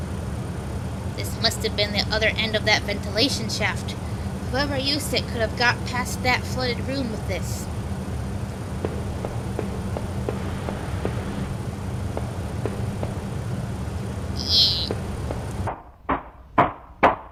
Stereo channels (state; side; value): identical; both; correlation 1.00